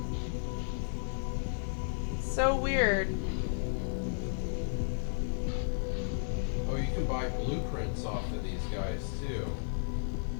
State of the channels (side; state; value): right; silent; digital silence